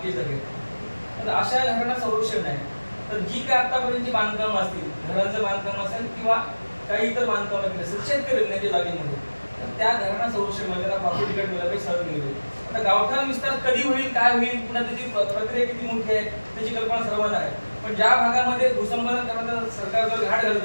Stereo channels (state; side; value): inverted; both; correlation -1.00